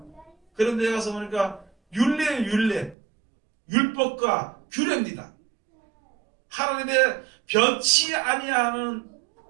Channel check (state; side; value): drops out; left; at 3.0 s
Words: 그런데 가서 보니까 율례예요. 율법과 규례입니다. 하나님의 변치 아니하는